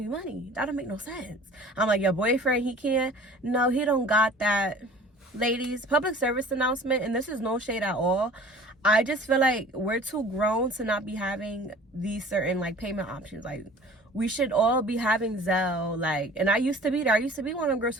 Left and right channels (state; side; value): normal; both; correlation 0.46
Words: money? That don't make no sense. I'm like, your boyfriend, he can't? No, he don't got that. Ladies, public service announcement, and this is no shade at all. I just feel like we're too grown to not be having these certain, like, payment options. Like, we should all be having Zelle. Like, and I used to be there. I used to be one of them girls